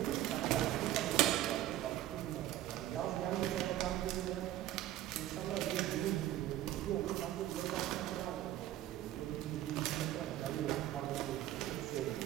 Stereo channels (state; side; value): quieter; left; 13.7 dB